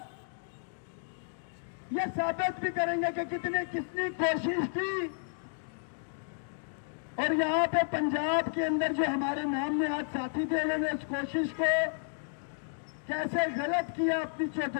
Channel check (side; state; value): right; silent; digital silence